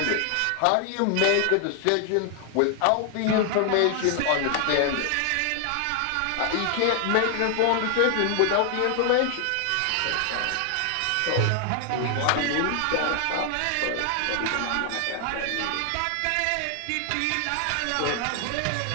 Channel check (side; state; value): both; different; correlation 0.00